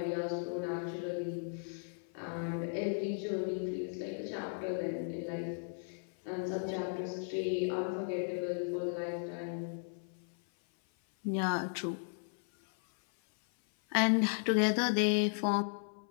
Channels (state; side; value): silent; right; 54 dB below the other